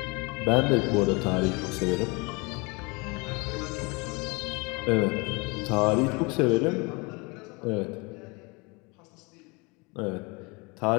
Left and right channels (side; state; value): right; quieter; 28.1 dB